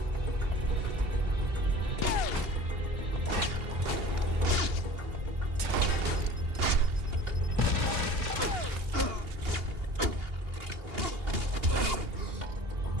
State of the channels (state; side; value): late; left; 2.8 ms